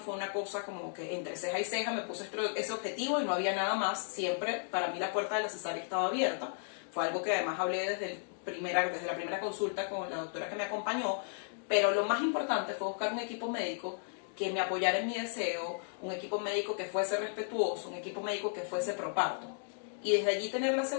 una cosa como que entre ceja y ceja me puse ese objetivo y no había nada más. Siempre para mí la puerta de la cesárea estaba abierta. Fue algo que además hablé desde la primera consulta con la doctora que me acompañó, pero lo más importante fue buscar un equipo médico que me apoyara en mi deseo, un equipo médico que fuese respetuoso, un equipo médico que fuese pro parto. Y desde allí tener la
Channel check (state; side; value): silent; right; digital silence